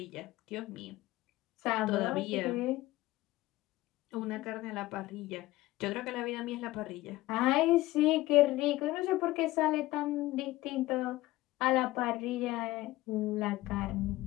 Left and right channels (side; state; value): right; quieter; 17.8 dB